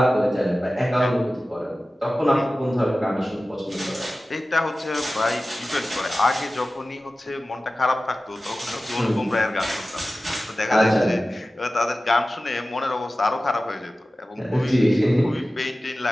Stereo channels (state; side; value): normal; both; correlation 0.96